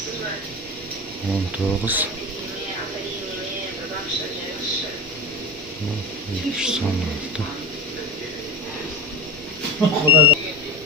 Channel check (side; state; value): both; normal; correlation 0.25